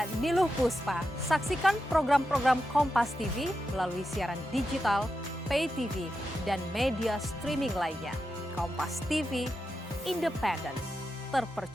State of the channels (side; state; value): both; normal; correlation 0.88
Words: Niluh Puspa. Saksikan program-program Kompas TV melalui siaran digital, pay TV, dan media streaming lainnya. Kompas TV, independen,